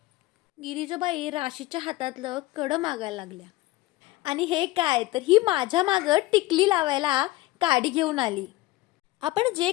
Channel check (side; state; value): right; quieter; 18.3 dB